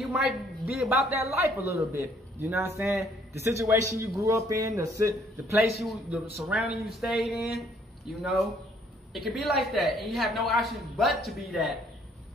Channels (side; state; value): both; normal; correlation 0.64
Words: might be about that life a little bit. You know what I'm saying? The situation you grew up in, the place the surrounding you stayed in, you know, it could be like that, and you have no option but to be that.